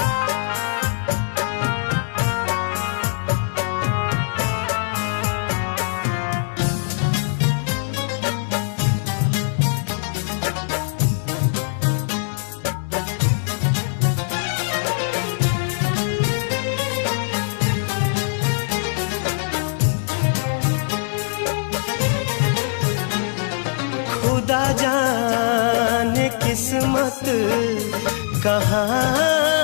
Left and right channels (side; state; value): right; silent; digital silence